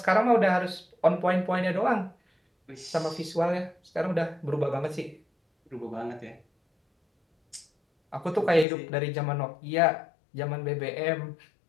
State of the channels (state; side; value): drops out; right; at 8.7 s